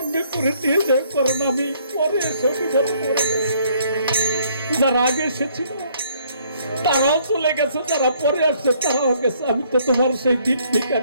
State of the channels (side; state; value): both; inverted; correlation -0.64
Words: করে নিয়ে যাও কারণ আমি পরে এসে বিপদ করে গেছি। যারা আগে এসেছিল তারাও চলে গেছে যারা পরে আসছে তারাও গেছে আমি তো তোমার সেই দিন